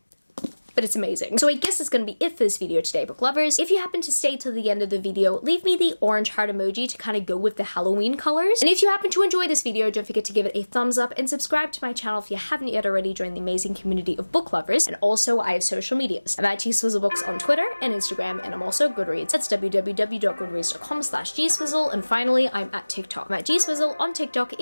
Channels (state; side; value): inverted; both; correlation -1.00